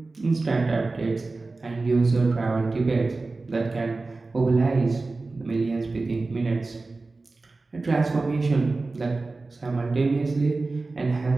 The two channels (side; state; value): left; quieter; 3.5 dB